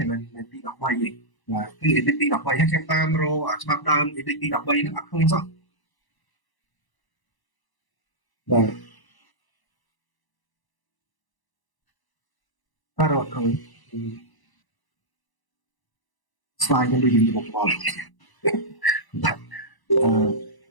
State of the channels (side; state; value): right; late; 1.0 ms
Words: យមិនទី13ទេបាទគឺ edit ទី13ហើយខ្ញុំតាមរកច្បាប់ដើម edit ទី13ហ្នឹងអត់ឃើញសោះបាទតែរត់ឃើញស្លាយខ្ញុំដូចយើងមកបល់បាទ